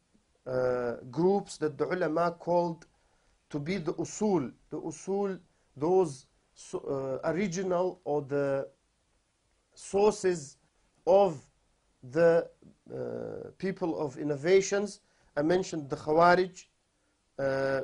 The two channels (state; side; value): identical; both; correlation 1.00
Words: groups that the ulama called to be the usul. The usul, those original or the sources of the people of innovations. I mentioned the Khawarij.